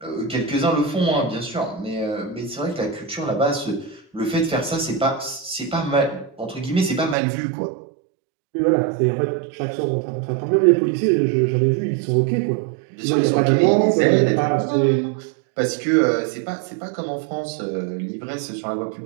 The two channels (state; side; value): drops out; left; at 7.2 s